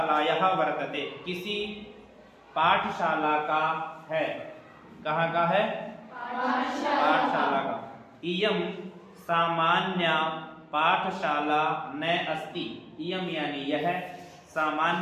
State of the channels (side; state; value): both; identical; correlation 1.00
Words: वर्तते, किसी पाठशाला का है। कहाँ का है? पाठशाला का। इयम सामान्य पाठशाला न अस्ति। इयम यानी यह,